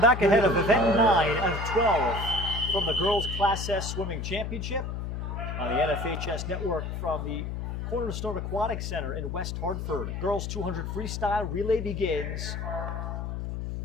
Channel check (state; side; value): noise; left; hum, 4 dB below the sound